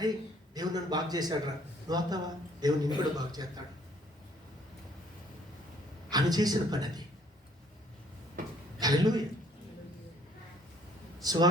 దేవుడు నన్ను బాగు చేశాడు రా, నువ్వు అవుతావా? దేవుడు నిన్ను కూడా బాగు చేస్తాడు. ఆమె చేసిన పని అది. హల్లెలూయా.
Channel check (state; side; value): normal; both; correlation 0.61